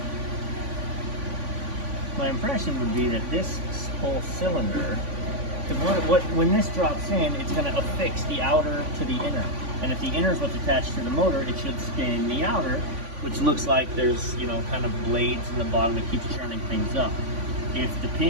My impression would be that this whole cylinder, when this drops in, it's going to affix the outer to the inner. And if the inner is what's attached to the motor, it should spin the outer, which looks like there's, kind of blades in the bottom that keeps churning things up. If the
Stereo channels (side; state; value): left; late; 3.5 ms